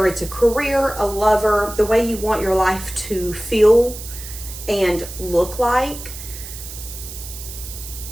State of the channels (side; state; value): right; noise; hiss, 12 dB below the sound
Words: it's a career, a lover, the way you want your life to feel and look like.